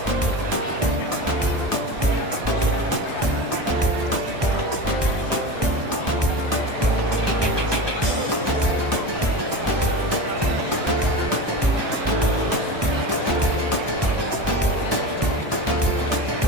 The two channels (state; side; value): late; left; 1.2 ms